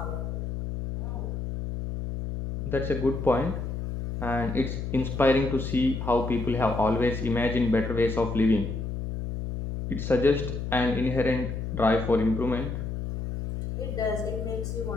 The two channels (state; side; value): noise; left; hum, 4 dB below the sound